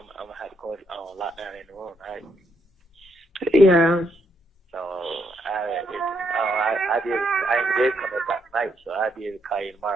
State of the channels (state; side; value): normal; both; correlation 0.76